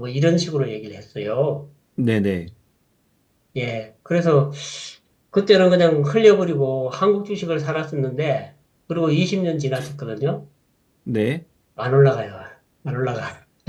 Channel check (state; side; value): identical; both; correlation 1.00